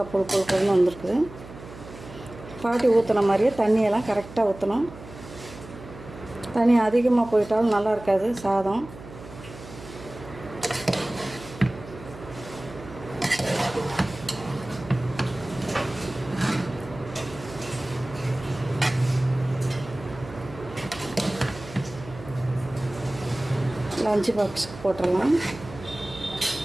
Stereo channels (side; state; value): right; noise; hum, 16 dB below the sound